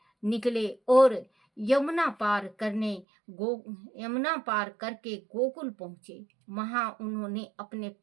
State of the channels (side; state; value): left; drops out; at 3.1 s